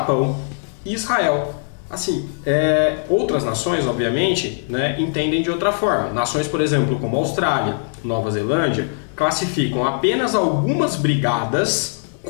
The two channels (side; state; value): right; silent; digital silence